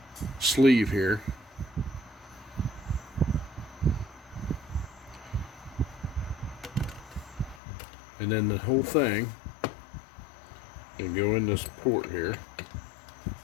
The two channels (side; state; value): right; drops out; at 7.6 s